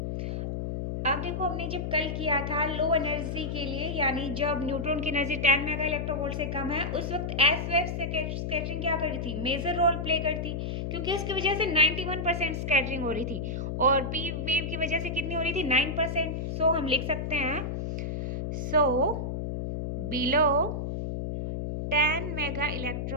अब देखो हमने जब कल किया था लो एनर्जी के लिए, यानी जब न्यूट्रॉन की एनर्जी 10 मेगा इलेक्ट्रोवोल्ट से कम है, उस वक्त एस वेव स्कैटरिंग क्या कर रही थी, मेजर रोल प्ले करती, क्योंकि इसकी वजह से 91% स्कैटरिंग हो रही थी और पी वेव की वजह से कितनी हो रही थी, 9%। सो हम लिख सकते हैं, so below 10 mega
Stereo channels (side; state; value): left; noise; hum, 3 dB below the sound